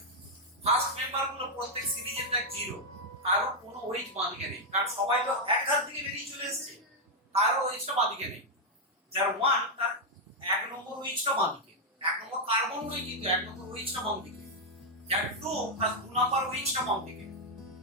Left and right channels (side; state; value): both; normal; correlation -0.01